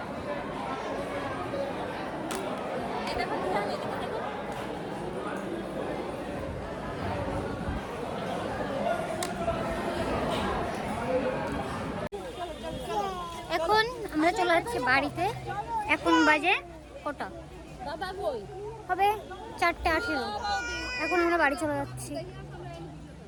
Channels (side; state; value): both; identical; correlation 1.00